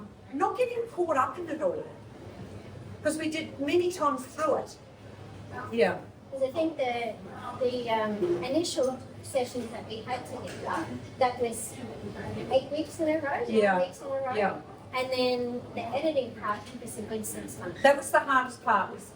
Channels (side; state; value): both; identical; correlation 1.00